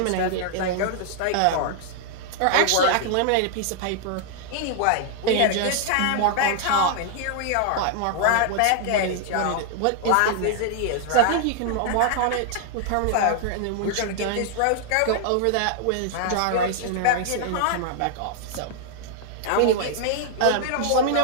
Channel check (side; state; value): both; different; correlation 0.00